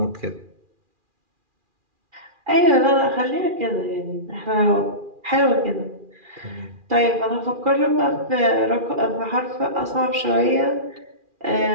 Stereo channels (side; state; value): left; late; 2.4 ms